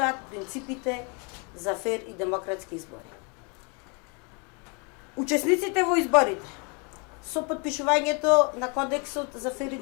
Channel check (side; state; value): right; quieter; 33.4 dB